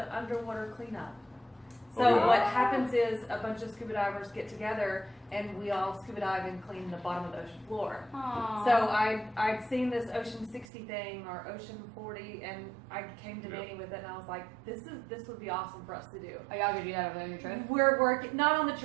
underwater cleanup. So Oh, yeah. what happens is a bunch of scuba divers get together and we all scuba dive and clean the bottom of the ocean floor. Aww. So I'd seen this Ocean 60 thing or Ocean 40 and I came to Yeah. Manny with it and I was like, this would be awesome for us to do. Are y'all gonna do that on your trip? We're working, not on the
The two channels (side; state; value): left; drops out; at 10.7 s